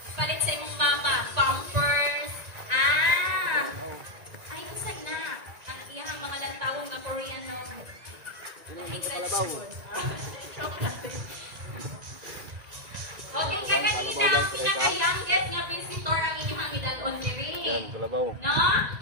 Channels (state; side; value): late; left; 1.9 ms